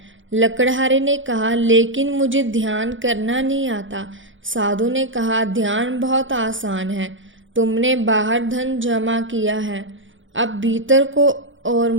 लकड़हारे ने कहा, लेकिन मुझे ध्यान करना नहीं आता। साधु ने कहा, ध्यान बहुत आसान है। तुमने बाहर धन जमा किया है, अब भीतर को और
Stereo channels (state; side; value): late; left; 0.56 ms